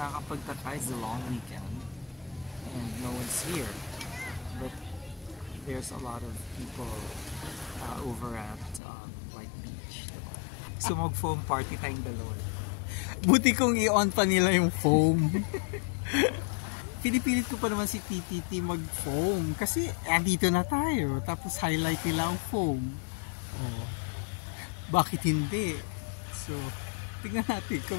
nakakapagtaka is the long weekend and no one's here. But there's a lot of people over at White Beach. Diba? So mag-foam party tayong dalawa. Buti kong i-on pa nila yung foam. Pinipilit ko pa naman si TTT mag-foam kasi andito na tayo tapos highlight nila ang foam. Oh. Bakit hindi? So, tignan natin kung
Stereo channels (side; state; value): right; drops out; at 8.8 s